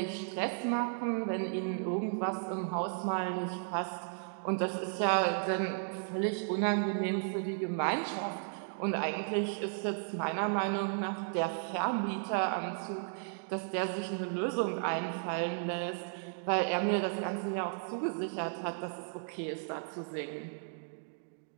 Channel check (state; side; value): silent; left; digital silence